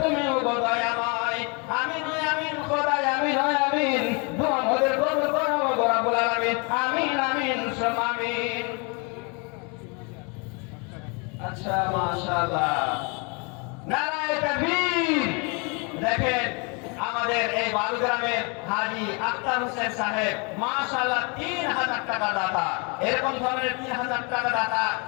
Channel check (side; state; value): right; quieter; 32.4 dB